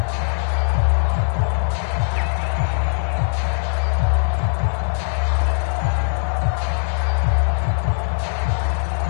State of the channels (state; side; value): silent; right; digital silence